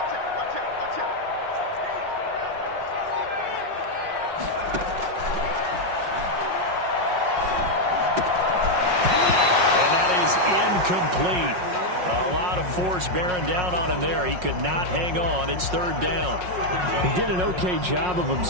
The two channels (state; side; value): late; left; 5.5 ms